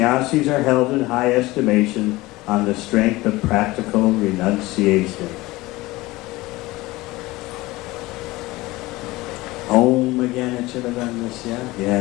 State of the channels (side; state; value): right; quieter; 20.0 dB